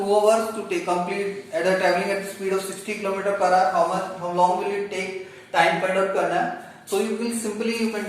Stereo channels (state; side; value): identical; both; correlation 1.00